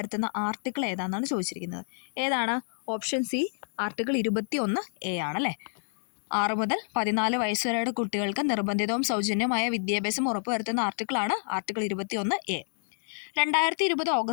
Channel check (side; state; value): right; silent; digital silence